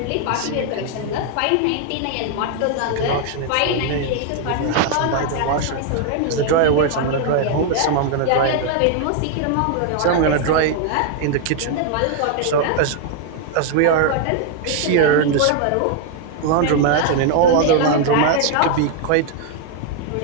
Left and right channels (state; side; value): different; both; correlation 0.00